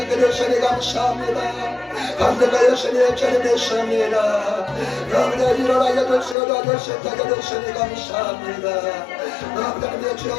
주시니 감사합니다. 감사가 예수님 주님 되십니다. 아버지 도와주시고 도와주시니 감사합니다. 아버지 주여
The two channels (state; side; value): drops out; right; at 6.4 s